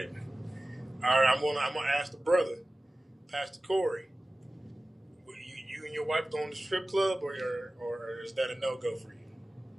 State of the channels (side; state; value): both; normal; correlation 0.96